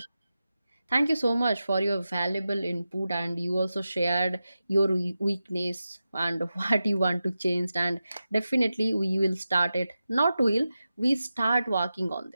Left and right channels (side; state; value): both; inverted; correlation -0.92